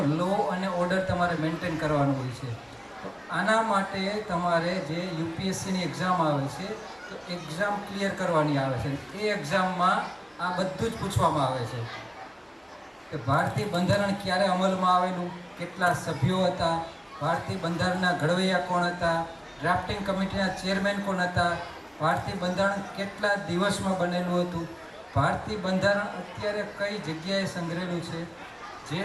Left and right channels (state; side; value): identical; both; correlation 1.00